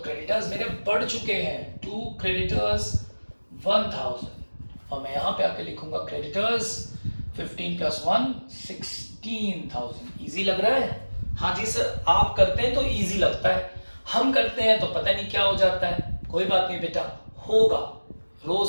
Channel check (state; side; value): inverted; both; correlation -1.00